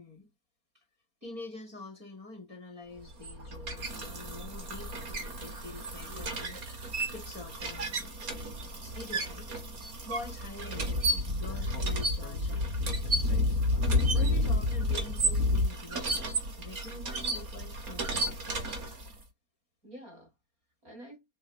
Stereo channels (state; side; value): late; left; 4.3 ms